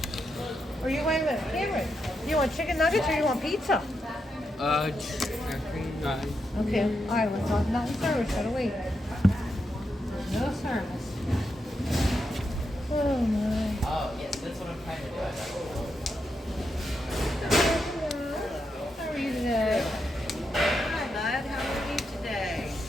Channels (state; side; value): normal; both; correlation 0.84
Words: Or you wait a minute, Cameron. You want chicken nuggets or you want pizza? Chicken nuggets. Okay. All right. Let's talk about service. Gotta wait. No service. Oh my. Oh, yes, that's what I'm trying to do. How are you today? Hi, bud. How are you today?